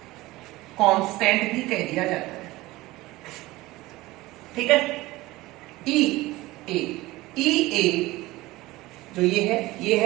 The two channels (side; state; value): left; quieter; 19.2 dB